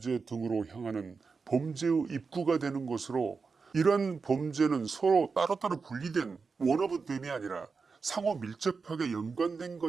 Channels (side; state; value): left; quieter; 4.8 dB